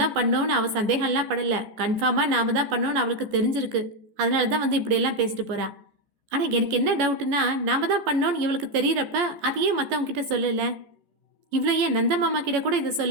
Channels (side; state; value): left; late; 14 ms